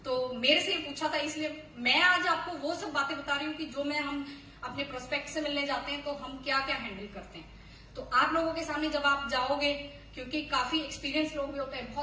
तो मेरे से पूछा था, इसलिए मैं आज आपको वो सब बातें बता रही हूँ कि जो हम अपने प्रोस्पेक्ट से मिलने जाते हैं तो हम क्या क्या हैंडल करते हैं। तो आप लोगों के सामने जब आप जाओगे, क्योंकि काफी एक्सपीरियंस लोग भी होते हैं,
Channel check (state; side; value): identical; both; correlation 1.00